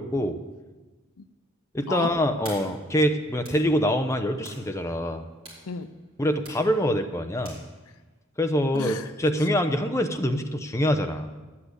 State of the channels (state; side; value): normal; both; correlation 0.67